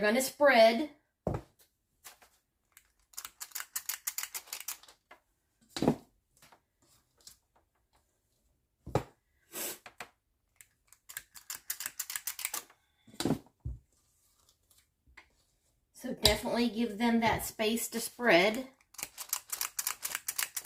to spread. So definitely give them that space to spread.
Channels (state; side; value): identical; both; correlation 1.00